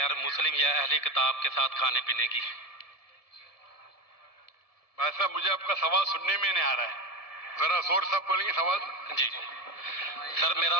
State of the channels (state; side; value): late; right; 1.7 ms